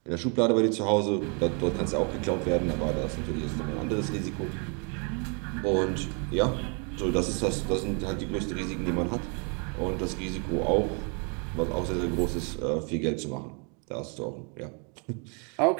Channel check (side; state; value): left; quieter; 36.5 dB